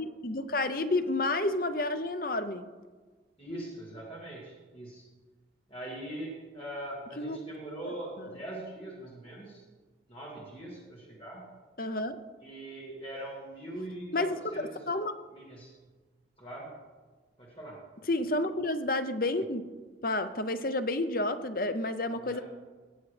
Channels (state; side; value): normal; both; correlation 0.15